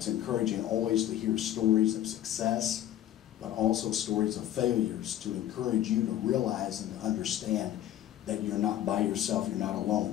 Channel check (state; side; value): quieter; right; 12.1 dB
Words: encouraging always to hear stories of success, but also stories of failures, to encourage you to realize and to understand that you're not by yourself, you're not